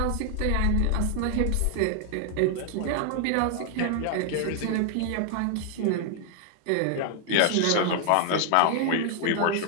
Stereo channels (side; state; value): both; different; correlation 0.00